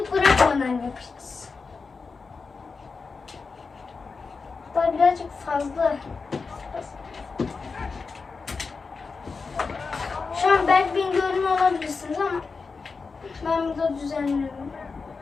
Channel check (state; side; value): quieter; right; 4.6 dB